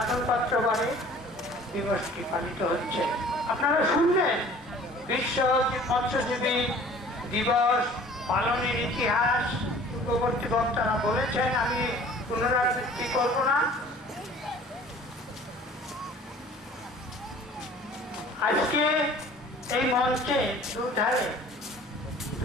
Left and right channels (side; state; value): both; normal; correlation 0.49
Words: পাত্র বারে দিবসটি পালিত হচ্ছে। আপনারা শুনলেন বিশ্ব মৎস্যজীবী দিবস পালনের ইতিহাস পূর্ববর্তী বক্তারা বলেছেন, আমি পুনরাবৃত্তি করব না। আজকে এই মঞ্চে দুধারে